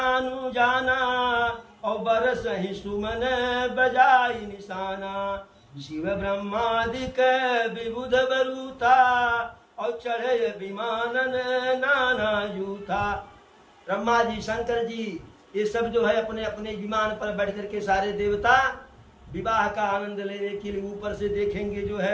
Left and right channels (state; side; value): identical; both; correlation 1.00